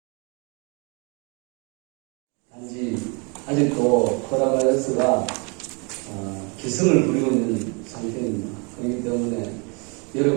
단지 아직도 코로나바이러스가 기승을 부리고 있는 상태입니다. 그렇기 때문에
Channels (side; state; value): left; quieter; 32.6 dB